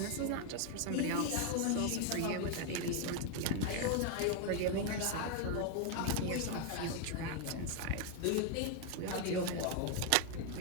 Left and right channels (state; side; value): different; both; correlation 0.01